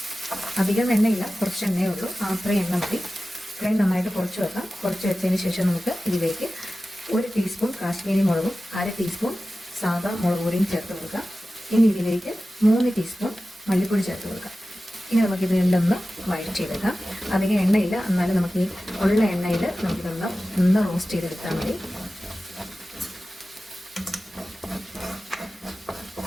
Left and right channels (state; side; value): normal; both; correlation 0.95